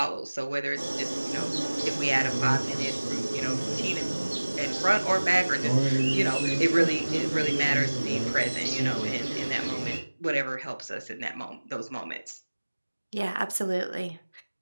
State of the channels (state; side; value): inverted; both; correlation -1.00